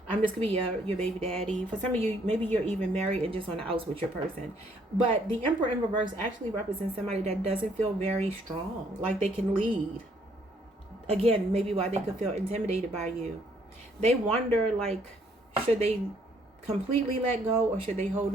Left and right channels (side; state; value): both; normal; correlation 0.67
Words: this could be your baby daddy. For some of you, maybe you're even married and just on the outs with your person. But the Emperor in reverse actually represents somebody that doesn't feel very strong, like they can lead. Again, maybe why they could feel intimidated by you. They wonder, like, should they completely let go or should they hold